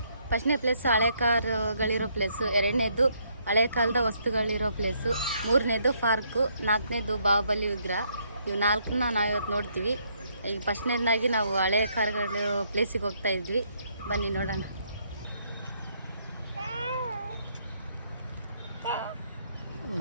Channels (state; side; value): inverted; both; correlation -0.71